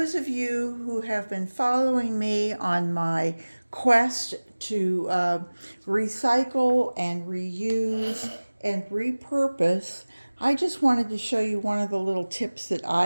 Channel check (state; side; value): inverted; both; correlation -1.00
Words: of you who have been following me on my quest to recycle and reuse and repurpose, I just wanted to show you one of the little tips that